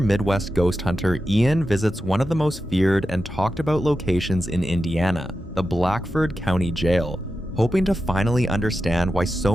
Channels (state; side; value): normal; both; correlation 0.90